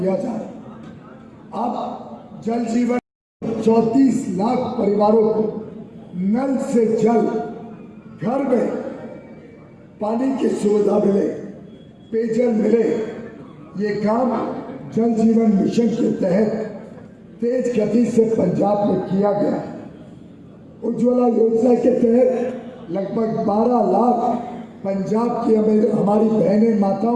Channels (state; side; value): identical; both; correlation 1.00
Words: जा रहा है। अब जल जीवन 34 लाख परिवारों को नल से जल, घर में पानी की सुविधा मिले, पेयजल मिले, ये काम जल जीवन मिशन के तहत तेज गति से पंजाब में किया गया। उज्ज्वला योजना के तहत लगभग 12 लाख पंजाब की हमारी बहनें